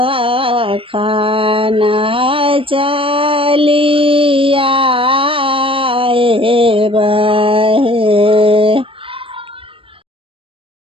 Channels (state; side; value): late; left; 0.26 ms